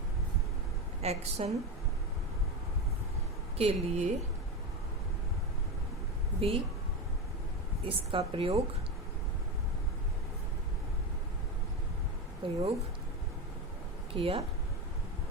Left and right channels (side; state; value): both; normal; correlation 0.18